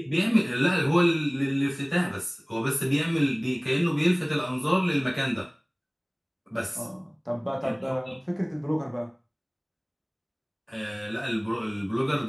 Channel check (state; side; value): identical; both; correlation 1.00